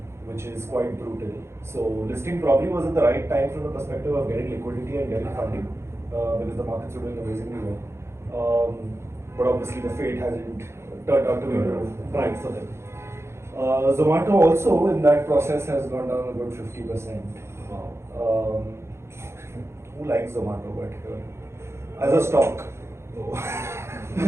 Which is quite brutal. So listing probably was at the right time from the perspective of getting liquidity and getting funding because the markets were doing amazingly well. But obviously the fate hasn't turned out to be bright for them. Zomato also in that process has gone down a good 50%. Wow. Who likes Zomato? But as a stock.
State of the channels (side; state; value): left; late; 0.13 ms